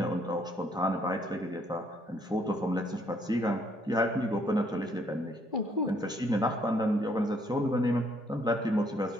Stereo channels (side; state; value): both; normal; correlation 0.68